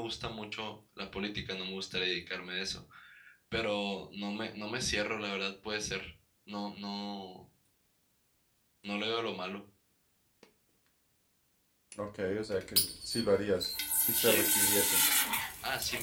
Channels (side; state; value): both; identical; correlation 1.00